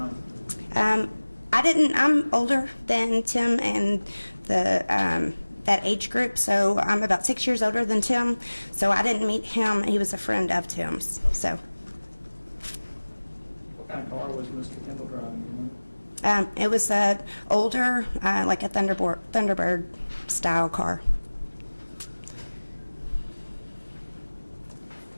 I'm older than Tim and that age group, so I'm about 6 years older than Tim, so I didn't meet him. He was a friend of Tim's, so. What kind of car was Mr. Kendall driving? It was older, like a Thunderbird style car.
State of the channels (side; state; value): both; inverted; correlation -1.00